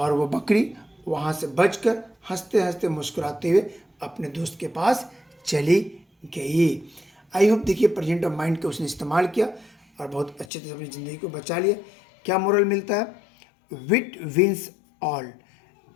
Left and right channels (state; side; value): drops out; right; at 10.5 s